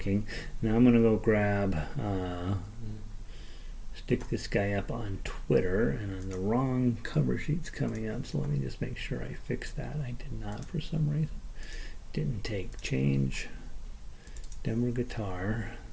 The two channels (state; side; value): identical; both; correlation 1.00